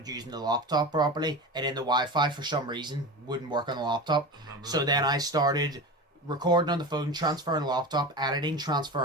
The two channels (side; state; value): both; normal; correlation 0.27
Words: using the laptop properly, and then the Wi-Fi, for some reason, wouldn't work on the laptop. So then I started recording on the phone, transferring the laptop, editing,